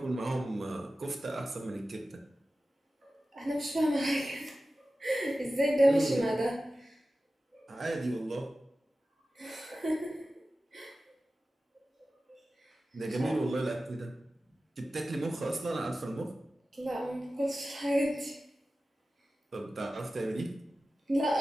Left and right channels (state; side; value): normal; both; correlation 0.95